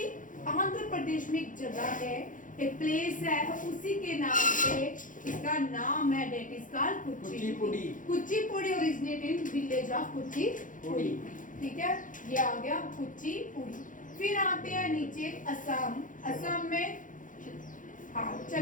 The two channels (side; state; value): right; late; 0.38 ms